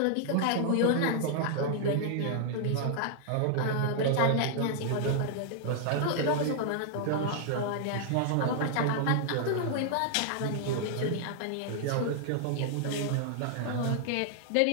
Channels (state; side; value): different; both; correlation -0.01